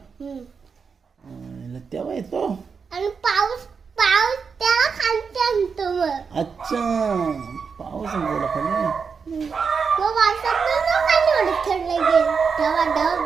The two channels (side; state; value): left; quieter; 5.7 dB